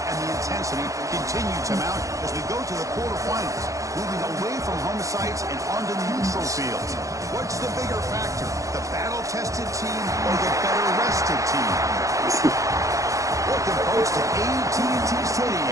the intensity continue to mount as we go to the quarterfinals, moving away from home sites and onto neutral fields. What's the bigger factor, the battle-tested team or the better-rested team? Welcome, folks, to AT&T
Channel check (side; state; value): left; late; 0.16 ms